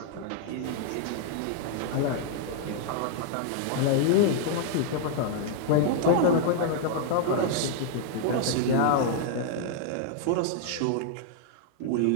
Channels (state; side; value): different; both; correlation -0.01